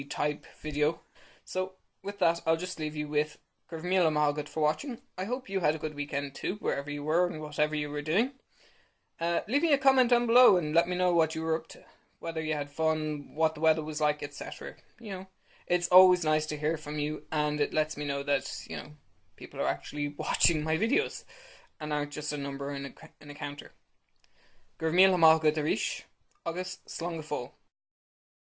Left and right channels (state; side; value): identical; both; correlation 1.00